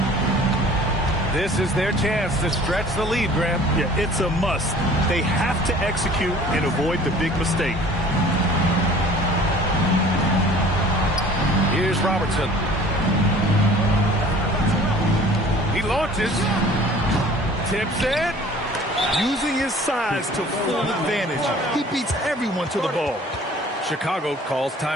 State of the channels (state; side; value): normal; both; correlation 0.48